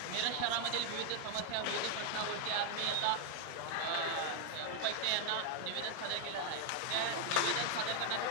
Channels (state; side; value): different; both; correlation 0.01